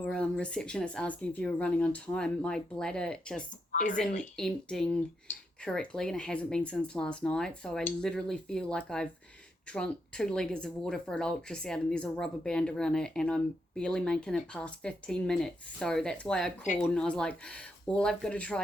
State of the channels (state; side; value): normal; both; correlation 0.82